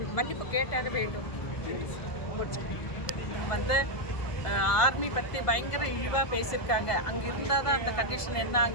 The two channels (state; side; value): late; right; 1.5 ms